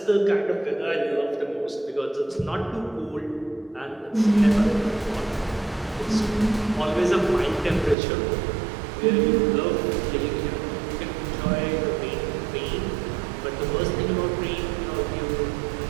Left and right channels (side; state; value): left; drops out; at 8.0 s